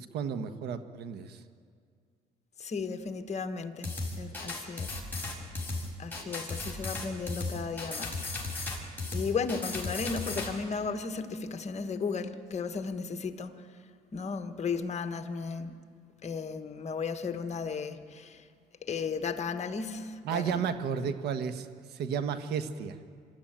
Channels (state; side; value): normal; both; correlation 0.49